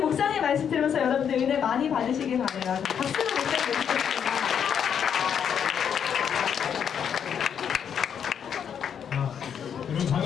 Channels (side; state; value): right; quieter; 8.0 dB